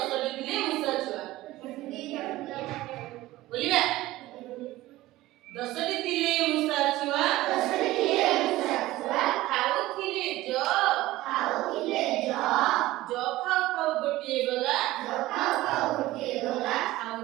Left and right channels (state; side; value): quieter; left; 17.1 dB